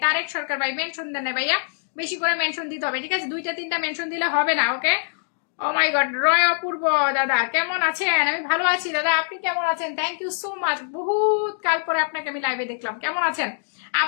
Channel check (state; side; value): silent; right; digital silence